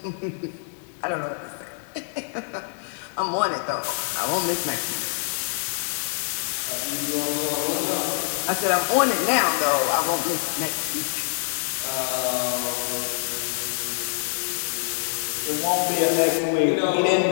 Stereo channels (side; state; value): right; silent; digital silence